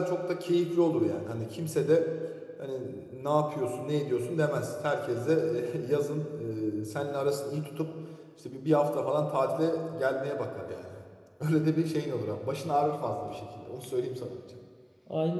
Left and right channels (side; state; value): both; identical; correlation 1.00